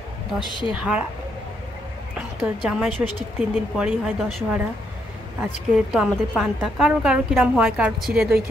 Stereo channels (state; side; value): normal; both; correlation 0.76